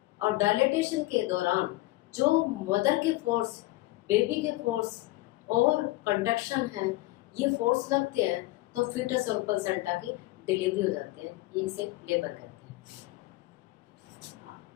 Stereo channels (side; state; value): right; quieter; 19.2 dB